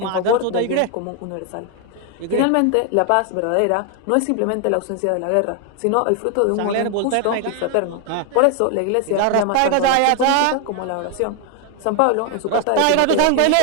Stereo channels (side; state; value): both; different; correlation 0.01